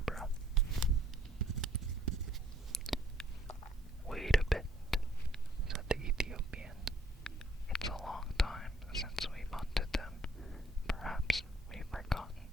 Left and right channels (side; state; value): both; normal; correlation 0.62